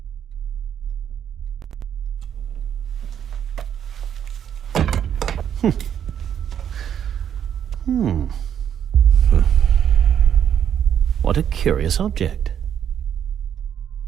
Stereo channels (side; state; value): left; quieter; 9.1 dB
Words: What a curious object.